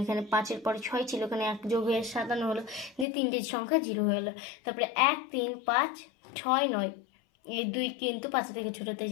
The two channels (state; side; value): drops out; right; at 3.1 s